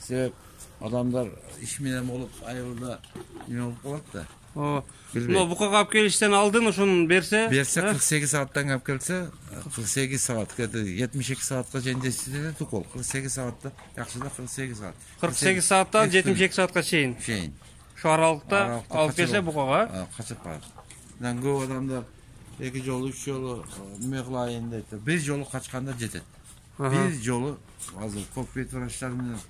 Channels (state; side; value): identical; both; correlation 1.00